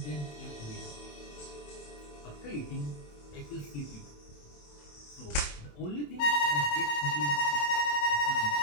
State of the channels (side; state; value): right; late; 27 ms